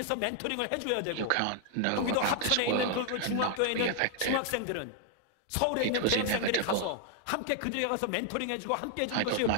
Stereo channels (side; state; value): both; different; correlation 0.00